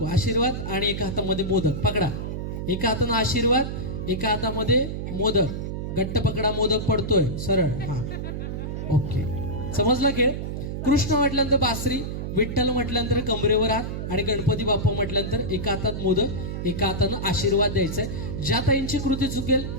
आशीर्वाद. आणि एका हातामध्ये मोदक पकडा. एका हातानं आशीर्वाद, एका हातामध्ये मोदक. घट्ट पकडा, मोदक पडतोय सरळ. हा ओके, समजला खेळ. कृष्ण म्हटल्यानंतर बासरी, विठ्ठल म्हटल्यानंतर कमरेवर हात आणि गणपती बाप्पा म्हटल्यानंतर एका हातात मोदक, एका हातानं आशीर्वाद द्यायचा आहे. ज्या ताईंची कृती चुकेल,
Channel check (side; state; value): right; noise; hum, 4 dB below the sound